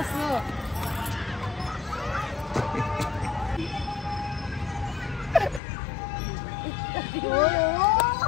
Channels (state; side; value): drops out; right; at 5.6 s